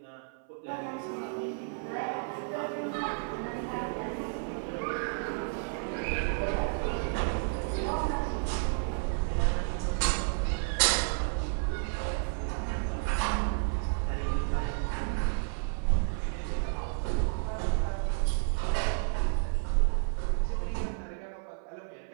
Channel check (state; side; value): silent; left; 57 dB below the other